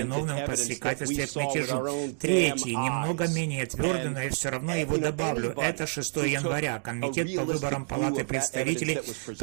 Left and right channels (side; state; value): left; silent; 59 dB below the other